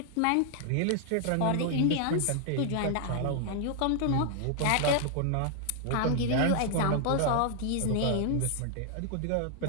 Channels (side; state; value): both; different; correlation 0.00